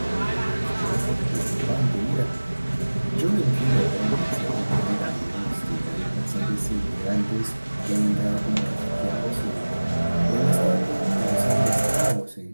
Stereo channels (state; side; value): inverted; both; correlation -1.00